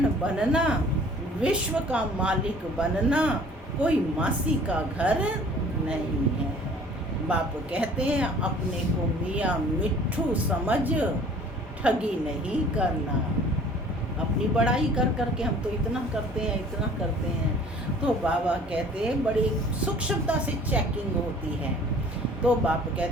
बनना, विश्व का मालिक बनना कोई मासी का घर नहीं है। बाप कहते हैं अपने को मियाँ मिट्ठू समझ, ठगी नहीं करना। अपनी बड़ाई कर करके हम तो इतना करते हैं, इतना करते हैं। तो बाबा कहते हैं बड़ी सूक्ष्मता से चेकिंग होती है। तो बाप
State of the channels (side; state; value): both; normal; correlation 0.50